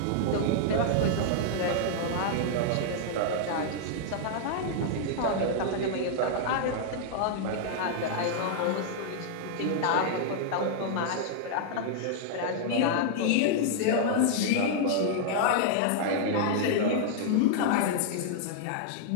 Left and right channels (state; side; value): different; both; correlation -0.01